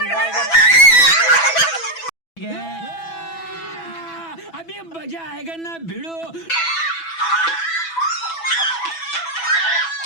अभी मजा आएगा ना भिड़ो।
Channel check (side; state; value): right; late; 6.0 ms